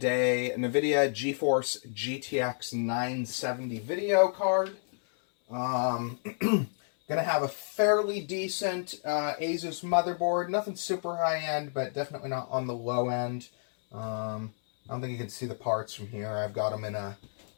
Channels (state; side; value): silent; right; 58 dB below the other